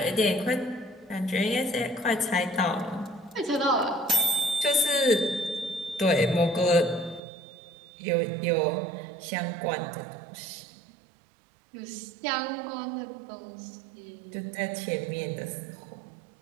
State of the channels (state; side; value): drops out; left; at 7.2 s